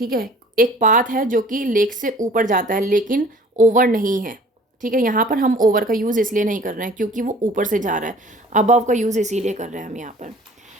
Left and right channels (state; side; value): normal; both; correlation 0.50